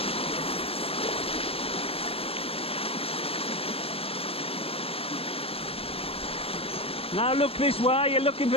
Now look this way, you're looking for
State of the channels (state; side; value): late; right; 0.28 ms